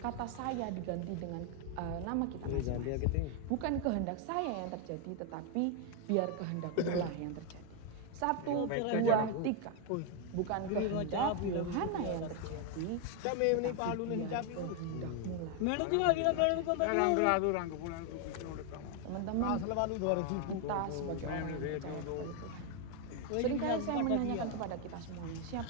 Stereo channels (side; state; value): both; different; correlation 0.01